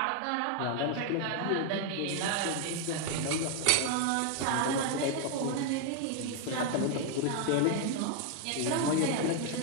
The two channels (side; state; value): both; different; correlation 0.01